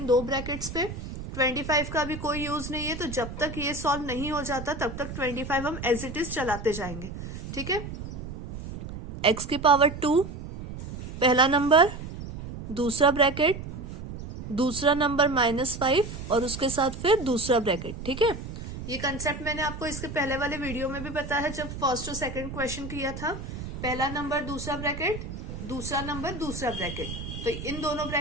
दो ब्रैकेट्स पे। 25 का भी कोई यूज नहीं है, तो जब तक ये सॉल्व नहीं हो जाता तब तक 25 हम एज इट इज चलाते जाएंगे। ठीक है, x की पावर 2 पहला नंबर, दूसरा ब्रैकेट, दूसरा नंबर -5 और उसके साथ फिर दूसरा ब्रैकेट। ठीक है, ये कंसेप्ट मैंने आपको इसके पहले वाले वीडियो में भी बताया है जब फर्स्ट और सेकंड क्वेश्चन किया था। पहला नंबर दूसरा ब्रैकेट, दूसरा नंबर दूसरा ब्रैकेट, तो इन दोनों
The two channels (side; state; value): right; noise; rumble, 9 dB below the sound